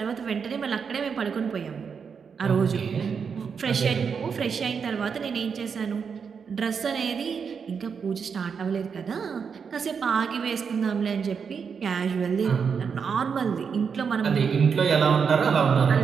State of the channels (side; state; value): left; quieter; 6.2 dB